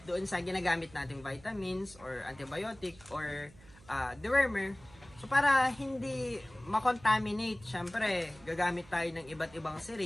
doon sa ginagamit nating vitamins or antibiotic or dewormer. So para hindi makontaminate, syempre gagamit tayo ng iba't ibang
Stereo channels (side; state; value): right; noise; hum, 23 dB below the sound